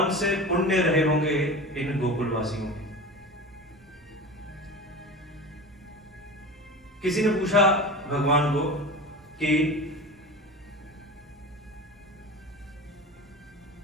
से पुण्य रहे होंगे इन गोकुलवासियों के। किसी ने पूछा भगवान को कि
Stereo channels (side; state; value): both; normal; correlation 0.31